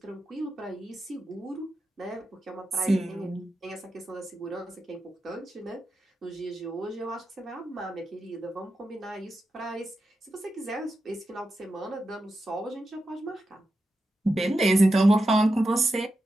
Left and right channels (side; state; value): both; normal; correlation 0.89